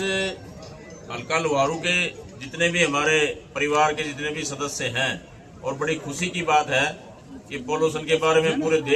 हल्का लोहारू के जितने भी हमारे परिवार के जितने भी सदस्य हैं, और बड़ी खुशी की बात है कि पोल्यूशन के बारे में पूरे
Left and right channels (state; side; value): identical; both; correlation 1.00